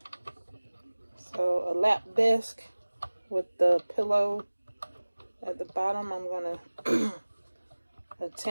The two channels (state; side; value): inverted; both; correlation -1.00